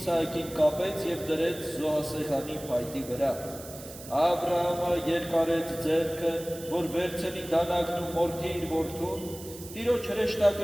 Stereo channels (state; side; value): noise; right; hiss, 15 dB below the sound